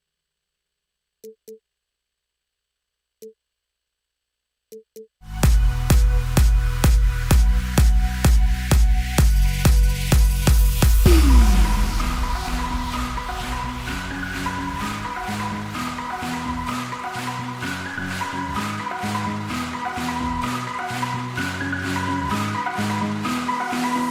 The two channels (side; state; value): both; identical; correlation 1.00